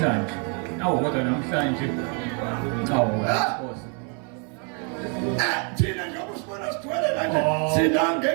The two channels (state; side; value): quieter; left; 38.9 dB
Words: kodwa namhlanje thina njengoba usibona sigcwele kanje sina